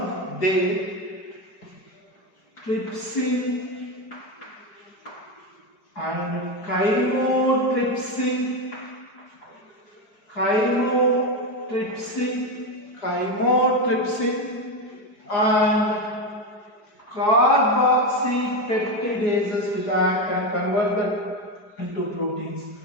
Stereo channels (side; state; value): right; late; 4.8 ms